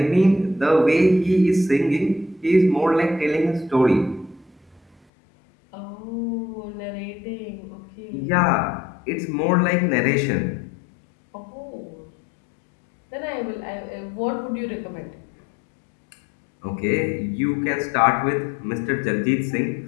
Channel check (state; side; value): drops out; right; at 5.0 s